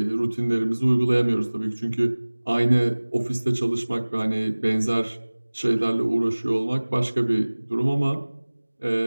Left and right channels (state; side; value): inverted; both; correlation -1.00